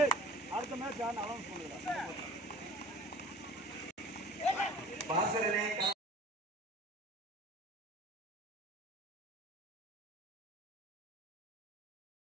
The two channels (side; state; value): both; normal; correlation 0.42